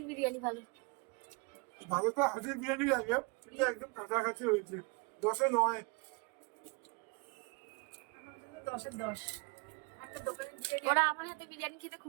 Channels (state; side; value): quieter; left; 30.2 dB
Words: বিরিয়ানি ভালো? ভালো তো হাজির বিরিয়ানি লাগে, কিন্তু একদম কাছাকাছি হয়েছে, 10-এ 9। 10-এ 10। ওরা আমার হাতে বিরিয়ানি খেতে